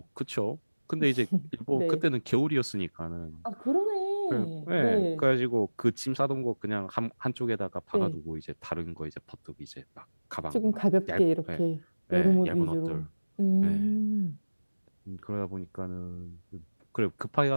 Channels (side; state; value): both; inverted; correlation -1.00